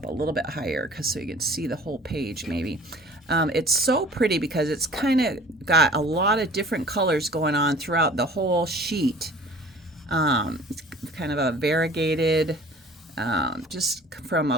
a little bit higher so you can see the whole page maybe. It's so pretty because it's kind of got a lot of different colors going on throughout the whole sheet. It's kind of a variegated just from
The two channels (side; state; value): both; normal; correlation 0.47